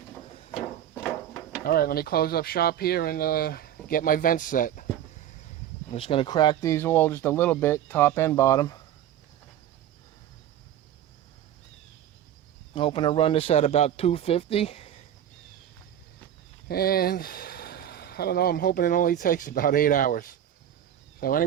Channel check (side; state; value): left; quieter; 10.7 dB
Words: Alright, let me close up shop here and get my vents set. I'm just going to crack these all just a little bit, top and bottom. I'm hoping to run this at about 250. And I don't know, I'm hoping it only takes about 8 hours. So